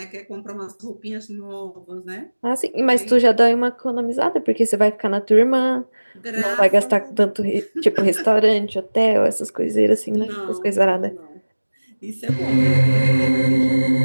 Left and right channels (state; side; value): inverted; both; correlation -1.00